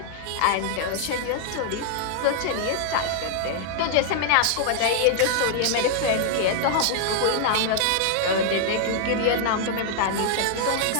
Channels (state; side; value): different; both; correlation -0.01